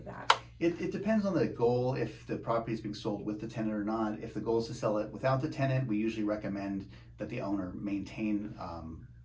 that? It depends on the goal, if the property is being sold with the tenant or not. If the goal is to sell it without the tenant, we usually recommend that the owner maintain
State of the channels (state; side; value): identical; both; correlation 1.00